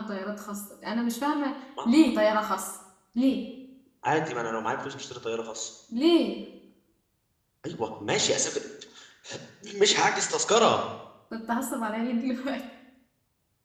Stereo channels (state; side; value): identical; both; correlation 1.00